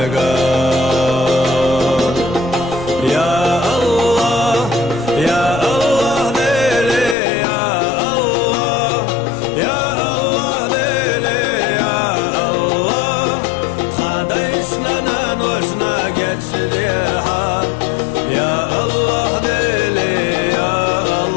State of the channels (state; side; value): drops out; right; at 7.2 s